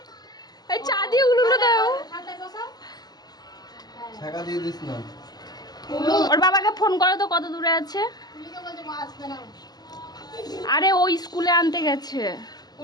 এই চা দিয়ে উলুলু দাও। টাকা দিয়ে দিস না। ওর বাবাকে ফোন করো তো, কত দূরে আছে। আরে ও স্কুলে আনতে গেছে।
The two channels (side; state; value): right; late; 0.20 ms